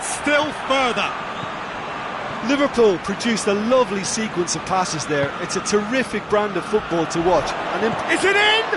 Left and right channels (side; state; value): both; identical; correlation 1.00